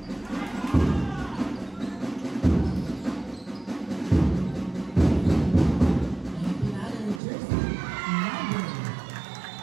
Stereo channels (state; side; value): drops out; left; at 7.2 s